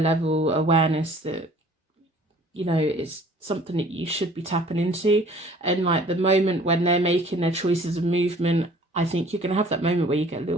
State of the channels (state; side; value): normal; both; correlation 0.52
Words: awareness that, you know, it's something that you should be tapping into. And like the moment when they're making their choices of movement, I think you're going to have that moment where you get a